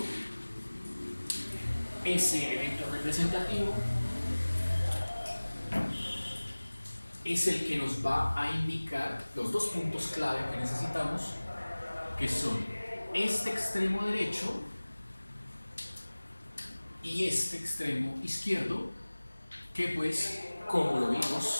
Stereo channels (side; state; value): both; inverted; correlation -1.00